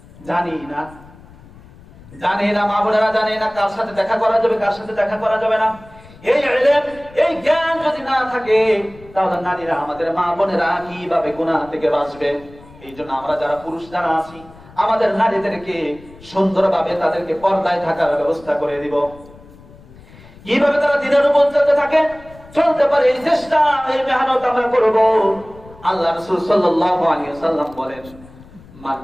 জানি না, জানি না। মা বোনেরা জানি না কার সাথে দেখা করা যাবে, কার সাথে দেখা করা যাবে না। এই ইলম, এই জ্ঞান যদি না থাকে, তাহলে নারীরা, আমাদের মা বোনেরা কিভাবে গুনাহ থেকে বাঁচবে? এই জন্য আমরা যারা পুরুষ যারা আছি, আমাদের নারীদেরকে সুন্দরভাবে তাদেরকে পর্দায় থাকার ব্যবস্থা করে দিব। কিভাবে তারা দিনের উপর চলতে থাকে, চলতে পারে, এই চেষ্টা, এই মেহনত আমরা করব। আল্লাহ রাসূল সাল্লাল্লাহু আলাইহি ওয়াসাল্লাম বলেন,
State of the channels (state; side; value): noise; left; rumble, 22 dB below the sound